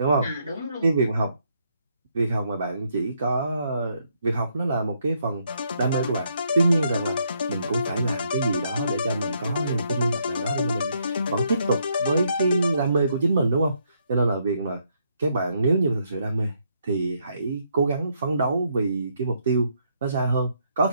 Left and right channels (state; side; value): inverted; both; correlation -0.74